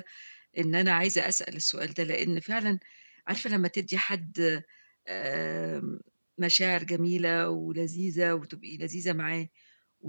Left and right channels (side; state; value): both; inverted; correlation -1.00